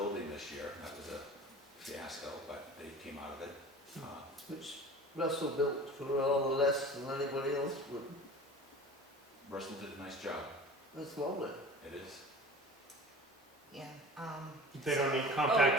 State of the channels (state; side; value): normal; both; correlation 0.39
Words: this year, that was a fiasco, but they came out of it. Which Russell built for all less than anybody else would. Russell did a nice job, That's lovely. it is. Yeah, They don't need